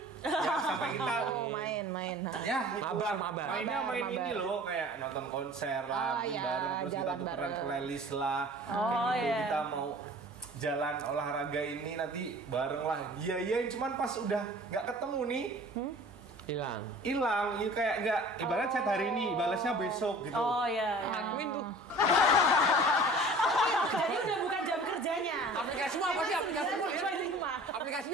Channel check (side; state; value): both; normal; correlation 0.45